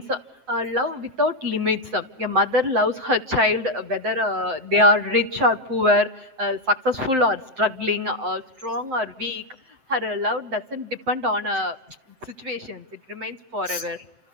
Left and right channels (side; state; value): left; late; 7.7 ms